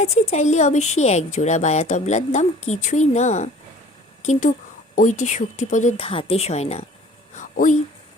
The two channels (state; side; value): normal; both; correlation 0.48